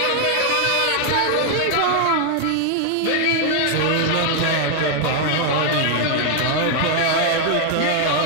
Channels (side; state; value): both; different; correlation 0.00